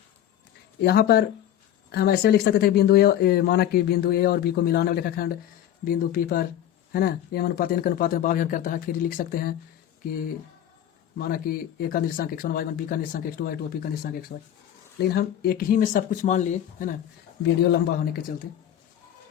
यहाँ पर हम ऐसे लिख सकते थे, बिंदु ए, माना कि बिंदु ए और बी को मिलाने वाला रेखाखंड बिंदु P पर, है ना, m अनुपात n के अनुपात में बाह्य विभाजन करता है। फिर लिख सकते हैं कि माना कि ए का निर्देशांक x1 y1, बी का निर्देशांक x2 y2, पी का निर्देशांक xy। लेकिन हम एक ही में सब कुछ मान लिए, है ना, वीडियो लंबा होने के चलते।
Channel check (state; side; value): quieter; right; 11.1 dB